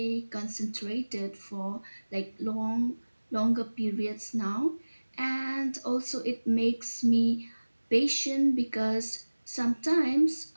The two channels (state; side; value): inverted; both; correlation -1.00